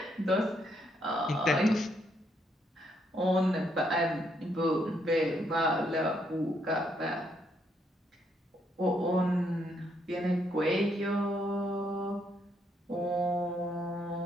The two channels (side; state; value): both; normal; correlation 0.74